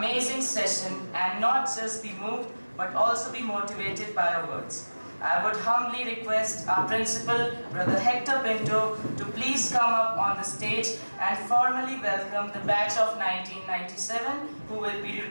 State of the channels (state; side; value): inverted; both; correlation -1.00